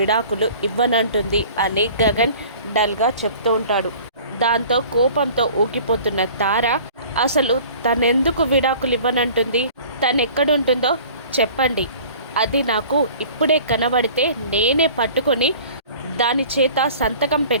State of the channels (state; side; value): inverted; both; correlation -0.46